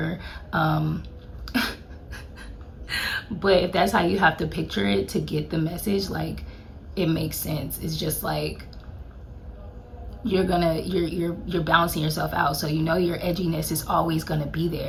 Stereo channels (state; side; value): identical; both; correlation 1.00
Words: But if that's how you have to picture it to get the message, like it makes sense. It's just like you're balancing yourself out, so you know your edginess is always gonna be